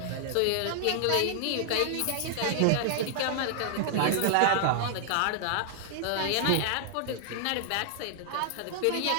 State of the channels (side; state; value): both; different; correlation -0.01